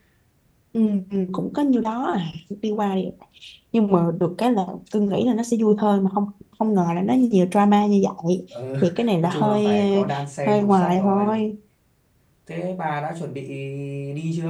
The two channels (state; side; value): identical; both; correlation 1.00